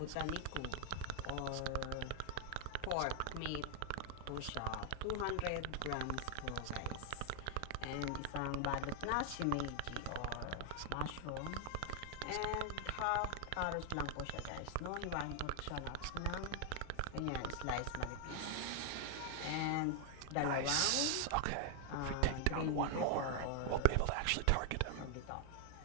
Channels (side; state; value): both; different; correlation 0.00